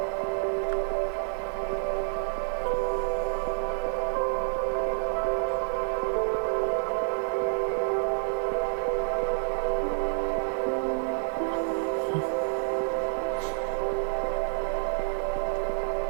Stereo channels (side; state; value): left; silent; 59 dB below the other